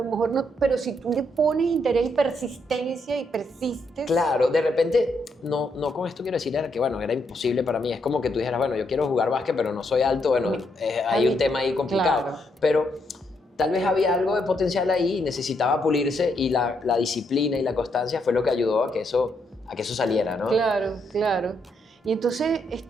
mejor no, pero si tú le pones interés y persistencia y persistes. Claro, de repente, no con esto quiero decir que, bueno, era imposible para mí. Es como que tú dijeras, bueno, yo quiero jugar básquet, pero no soy alto. Bueno, hay un tema ahí complicado. Claro. Pero tal vez había algo de potencial ahí y necesitaba pulirse, y la disciplina y la constancia fue lo que ayudó a que eso saliera, ¿no? Claro. Y entonces,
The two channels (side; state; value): both; normal; correlation 0.77